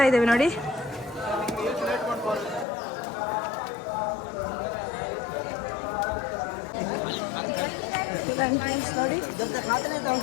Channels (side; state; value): right; drops out; at 2.7 s